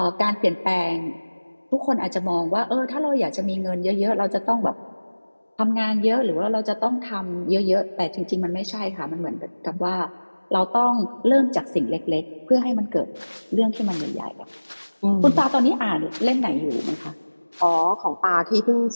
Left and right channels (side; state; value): both; inverted; correlation -1.00